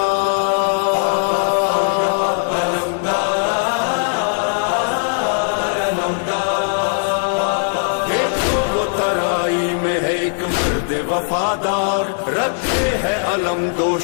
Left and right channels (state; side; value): silent; right; 67 dB below the other